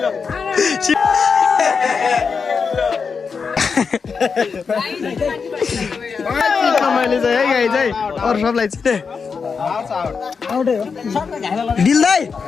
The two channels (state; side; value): quieter; right; 5.5 dB